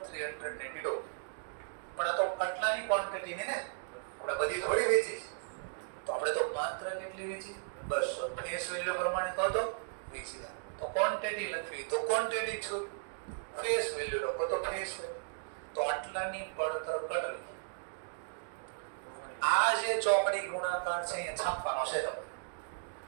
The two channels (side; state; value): left; silent; digital silence